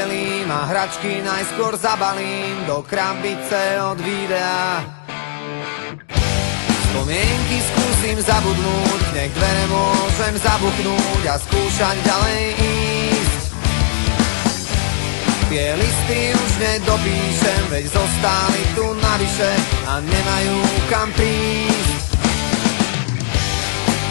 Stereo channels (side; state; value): right; silent; digital silence